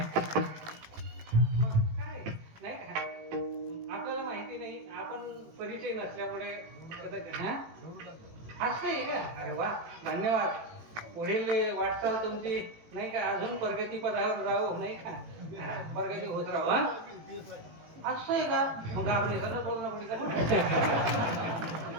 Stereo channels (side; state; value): left; late; 18 ms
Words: नाही का आपल्याला माहिती नाही, आपण परिचय नसल्यामुळे असं आहे का? अरे वा, धन्यवाद. पुढील वाटचाल तुमची नाही का अजून प्रगती पदावर राहू नाही का, प्रगती होत राहू. असं आहे का? मग आपले सरळ बोलणं पुढे